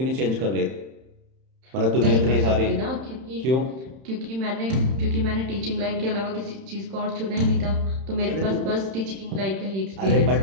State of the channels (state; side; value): late; left; 31 ms